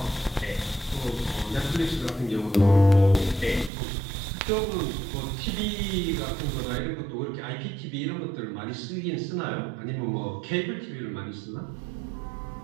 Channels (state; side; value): drops out; left; at 3.7 s